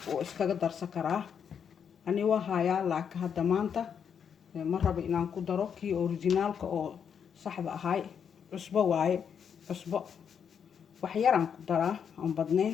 oo iskaga darsan karaa. ani waa hayaa laakiin hadda maanta ma rabo inaan ku daro kii originalka oo saxda ahay. cusbo waaye cusbo waxyaraan ku daraa aan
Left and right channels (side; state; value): right; quieter; 7.5 dB